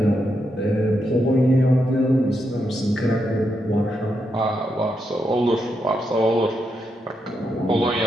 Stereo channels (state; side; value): normal; both; correlation 0.83